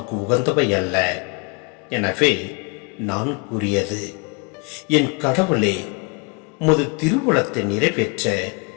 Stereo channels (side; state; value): right; quieter; 31.2 dB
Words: உகந்தவை அல்ல. எனவே நான் கூறியது, என் கடவுளே, உமது திருவுளத்தை நிறைவேற்ற